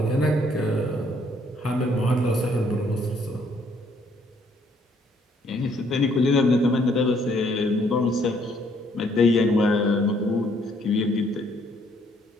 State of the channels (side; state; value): both; normal; correlation 0.66